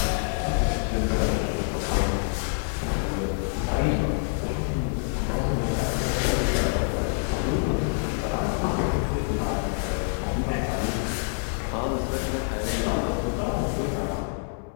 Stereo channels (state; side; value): silent; right; 61 dB below the other